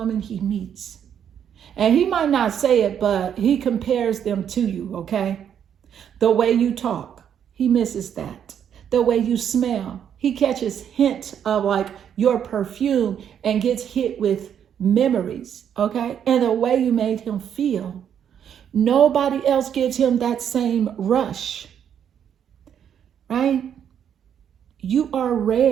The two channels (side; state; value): left; quieter; 8.8 dB